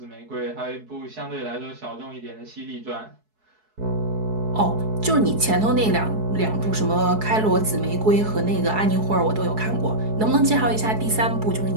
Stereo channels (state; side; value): late; left; 4.7 ms